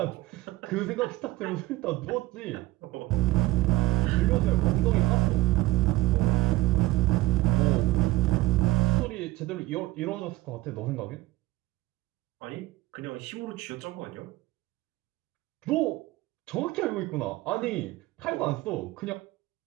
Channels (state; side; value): quieter; left; 18.4 dB